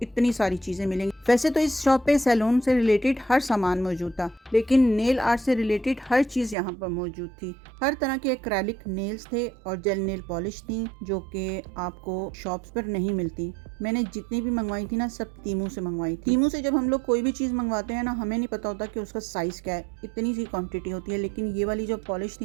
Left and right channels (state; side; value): drops out; left; at 6.6 s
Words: इतनी सारी चीजें मिलेंगी। वैसे तो इस शॉप पे सैलून से रिलेटेड हर सामान मौजूद था, लेकिन नेल आर्ट से रिलेटेड हर चीज यहाँ पर मौजूद थी। हर तरह के एक्रेलिक नेल्स थे और जेल नेल पॉलिश थी, जो कि आपको शॉप्स पर नहीं मिलती। मैंने जितनी भी मंगवाई थी ना, सब तीमू से मंगवाई थी। तीमू से जब हम लोग कोई भी चीज मंगवाते हैं ना, हमें नहीं पता होता कि उसका साइज क्या है, इतनी सी क्वांटिटी होती है। लेकिन ये वाली जो पॉलिश